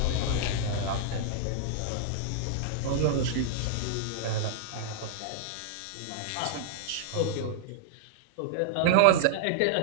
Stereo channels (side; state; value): both; different; correlation -0.01